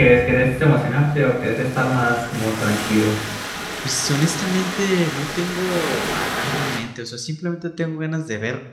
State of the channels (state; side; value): identical; both; correlation 1.00